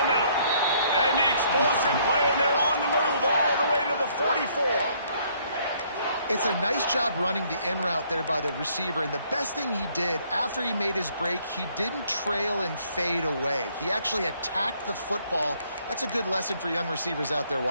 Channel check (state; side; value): inverted; both; correlation -0.65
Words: middle. And the explosive play, and they're on the move all the way to the 44. It's a nice job running the in route there by the receiver, and the best thing he did after he made his break, he didn't trail and fade away. He actually attacked the football. That's a good lesson for young receivers out there